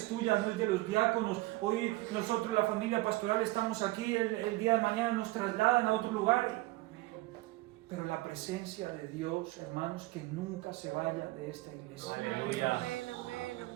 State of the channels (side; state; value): left; quieter; 19.9 dB